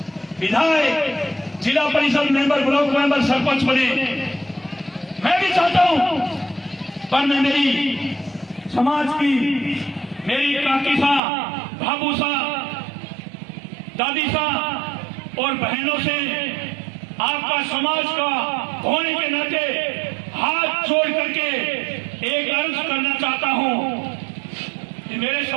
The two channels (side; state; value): left; drops out; at 11.2 s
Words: विधायक जिला परिषद मेंबर ब्लॉक मेंबर सरपंच बने। मैं भी चाहता हूं, पर मैं मेरी समाज की मेरी काकी सा, भाभू सा, दादी सा और बहनों से आपका समाज का होने के नाते हाथ जोड़ करके एक अर्ज करना चाहता हूं कि मेरे